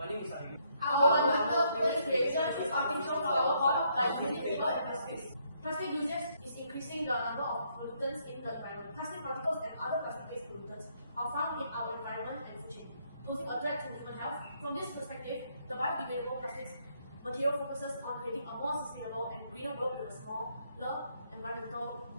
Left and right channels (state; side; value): inverted; both; correlation -0.71